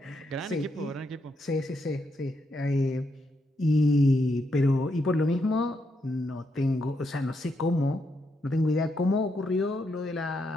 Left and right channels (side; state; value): both; normal; correlation 0.80